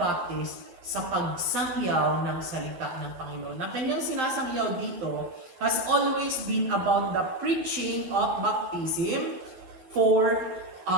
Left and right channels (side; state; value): left; late; 12 ms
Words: sa pagsangyaw ng salita ng Panginoon. Na kanyang sinasangyaw dito has always been about the preaching of baptism for